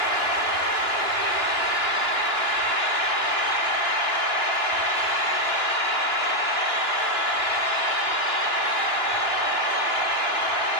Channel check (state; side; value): late; right; 2.9 ms